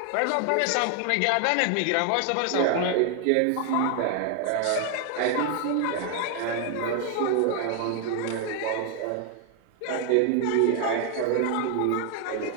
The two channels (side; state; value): both; different; correlation 0.01